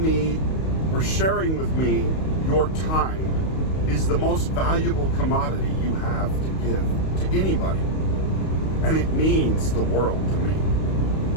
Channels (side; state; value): right; late; 32 ms